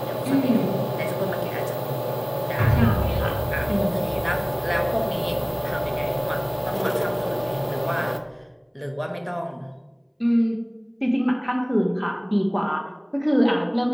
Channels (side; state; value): both; identical; correlation 1.00